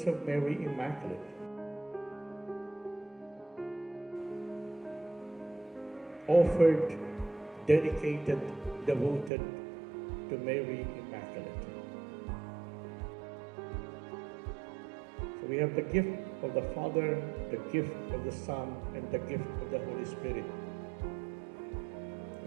of Mary Immaculate. Offered, dedicated, devoted to Mary Immaculate. So we have the gift of the Father, the gift of the Son, and the gift of the Holy Spirit.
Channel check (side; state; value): left; drops out; at 9.3 s